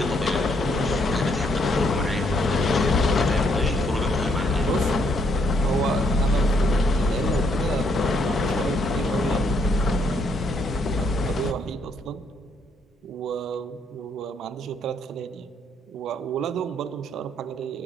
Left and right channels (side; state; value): both; normal; correlation 0.71